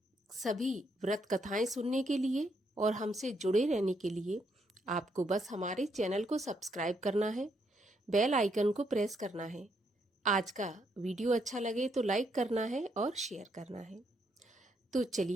सभी व्रत कथाएं सुनने के लिए और हमसे जुड़े रहने के लिए आपको बस हमारे चैनल को सब्सक्राइब करना है, बेल आइकन को प्रेस करना है। आज का वीडियो अच्छा लगे तो लाइक करना है और शेयर करना है। तो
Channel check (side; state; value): both; normal; correlation 0.75